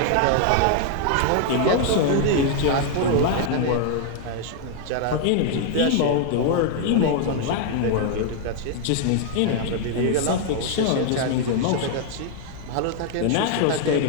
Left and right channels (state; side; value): different; both; correlation 0.00